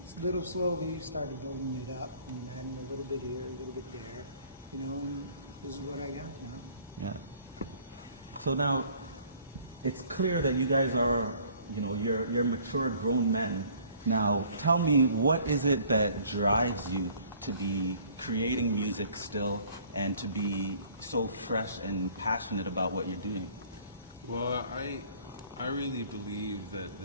little slowly started building it up and adding a little bit here, a little bit there, you know, and this is what I got now. Yeah. So now, it's clear that you guys are, you know, you're mature grown men. Now, tell me, what is it that drives you to be creating music still and to be so fresh and passionate about what you're doing? Well, I really believe that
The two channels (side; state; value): both; inverted; correlation -0.55